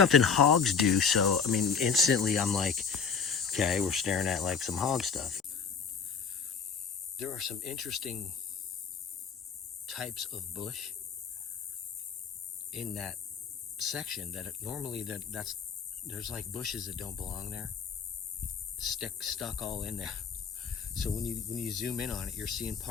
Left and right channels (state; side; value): quieter; right; 6.2 dB